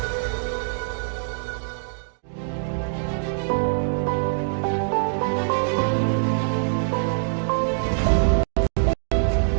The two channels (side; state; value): left; silent; digital silence